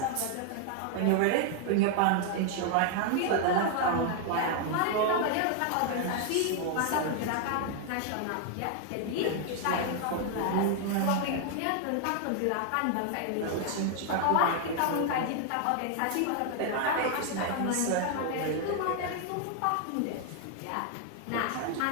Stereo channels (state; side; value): different; both; correlation 0.00